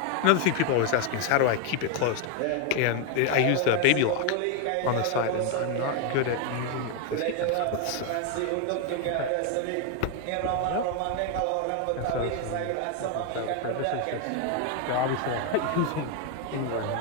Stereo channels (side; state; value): both; different; correlation 0.01